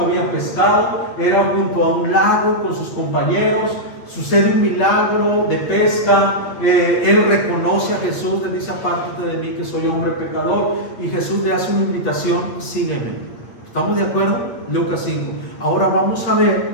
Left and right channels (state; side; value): late; right; 8.6 ms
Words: pescado, era junto a un lago con sus compañeros. Sucede un milagro de pesca, él reconoce a Jesús, le dice: apártate de mí que soy hombre pecador, y Jesús le hace una invitación: sígueme. ¿Estamos de acuerdo? Lucas 5. Ahora vamos a